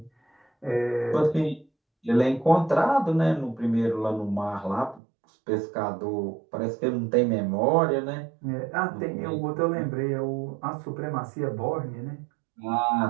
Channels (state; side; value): drops out; left; at 5.0 s